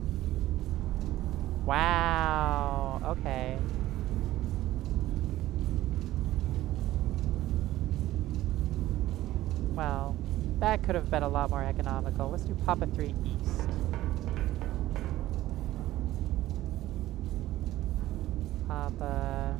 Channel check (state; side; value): quieter; left; 15.3 dB